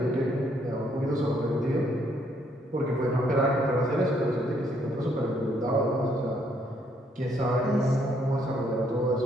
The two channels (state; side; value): normal; both; correlation 0.70